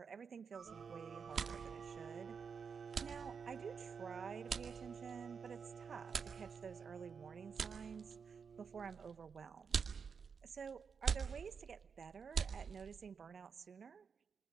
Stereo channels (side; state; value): left; quieter; 6.1 dB